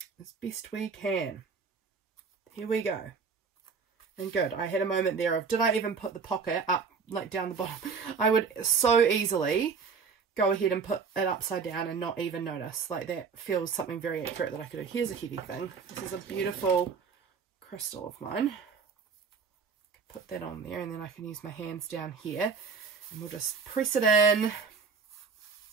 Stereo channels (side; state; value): left; quieter; 5.5 dB